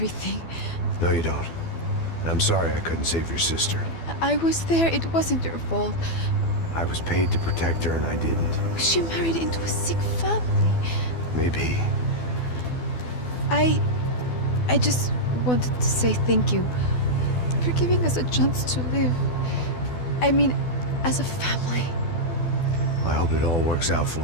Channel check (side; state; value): right; late; 12 ms